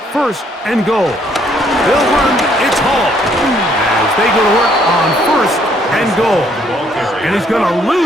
first and goal. They'll run. It's Hall as they go to work on first and goal. And he's going to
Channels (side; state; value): both; normal; correlation 0.67